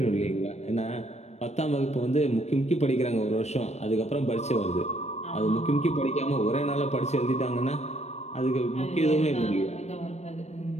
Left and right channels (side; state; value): right; late; 0.32 ms